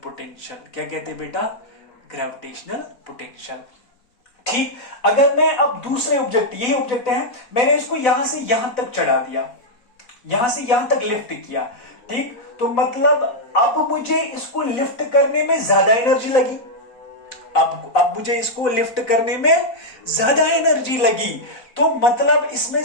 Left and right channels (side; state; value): right; late; 4.0 ms